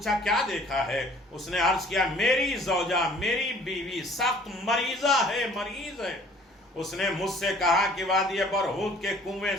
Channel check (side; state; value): both; normal; correlation 0.54